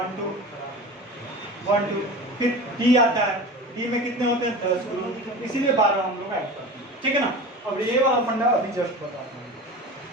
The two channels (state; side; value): normal; both; correlation 0.33